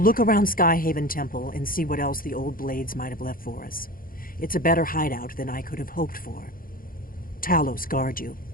look around Skyhaven Temple and see what else the old blades might have left for us. It's a better hideout than I could have hoped for. Talos guard you.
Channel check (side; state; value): right; late; 0.41 ms